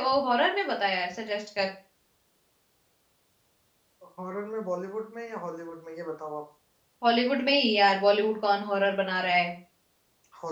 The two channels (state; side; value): identical; both; correlation 1.00